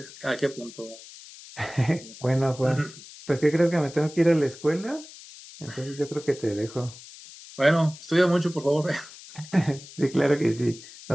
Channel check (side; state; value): left; noise; hiss, 18 dB below the sound